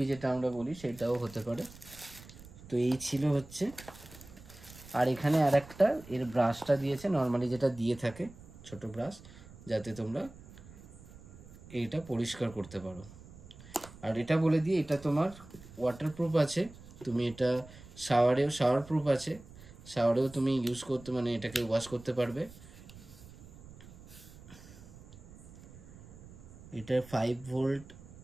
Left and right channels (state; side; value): noise; right; rumble, 19 dB below the sound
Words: যেটা আমরা বলি সেটাও হতে পারে। তো এই ছিল হচ্ছে। আর এখানে আরেকটা এর ব্রাশটা দিয়েছে, নর্মালি যেটা দিয়ে থাকে ছোট ব্রাশ, যাতে তোমরা এইটা পরিষ্কার করতে পারো। আর এটা বলে দিই, এটা তোমার ওয়াটারপ্রুফ আছে, তুমি এটা শাওয়ার প্রুফ আছে, শাওয়ারেও তুমি ইউজ করতে, মানে এটাকে ওয়াশ করতে পারবে। এটা 5 ভোল্ট।